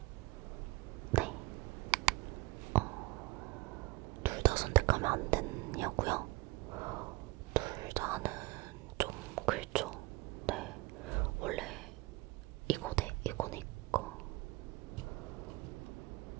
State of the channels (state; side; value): quieter; left; 22.5 dB